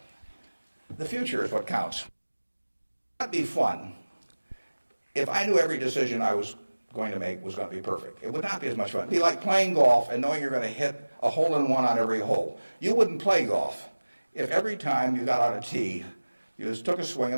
the future is what counts. It'd be fun if I knew every decision I was going to make was going to be perfect. It would not be as much fun. It'd be like playing golf and knowing you're going to hit a hole-in-one on every hole. You wouldn't play golf if every time you got on a tee, you just took a swing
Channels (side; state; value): both; inverted; correlation -1.00